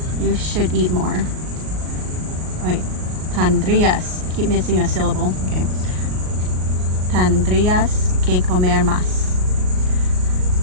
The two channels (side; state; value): left; late; 38 ms